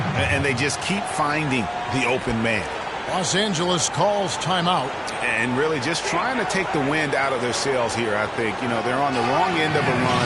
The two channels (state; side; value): identical; both; correlation 1.00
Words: And they just keep finding the open man. Los Angeles calls timeout. And really just trying to take the wind out of their sails here, I think. You know, they're on the wrong end of a